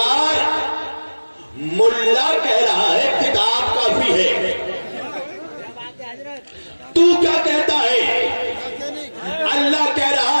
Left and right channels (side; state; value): both; inverted; correlation -1.00